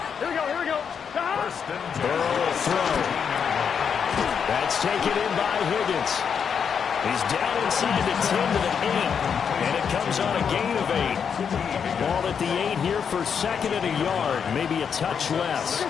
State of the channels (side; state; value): right; quieter; 7.0 dB